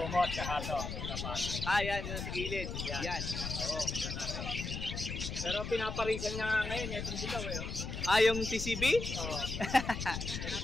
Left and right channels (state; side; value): noise; left; rumble, 5 dB below the sound